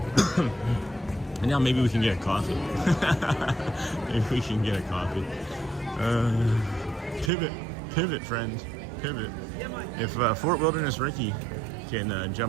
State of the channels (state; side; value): drops out; left; at 7.3 s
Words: And now maybe we can get a coffee. Maybe we can get a coffee. Pivot, friends, pivot. If Fort Wilderness Ricky can